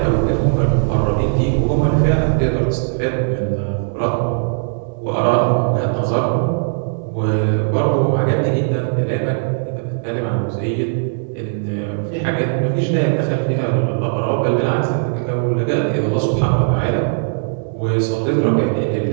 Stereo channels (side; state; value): left; silent; digital silence